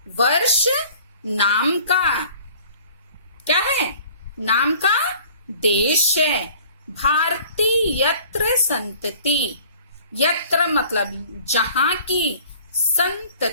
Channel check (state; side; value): inverted; both; correlation -0.50